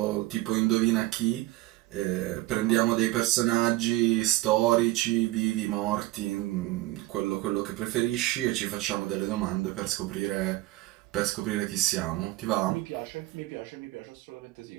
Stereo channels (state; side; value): quieter; left; 18.3 dB